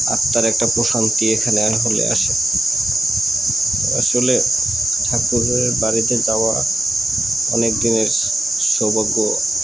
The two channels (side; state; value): both; normal; correlation 0.89